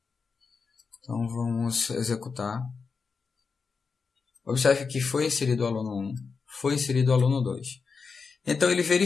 Então, vamos executar. Observe que foi inserido o aluno 1, foi inserido o aluno 2. Então, ele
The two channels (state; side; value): quieter; right; 5.1 dB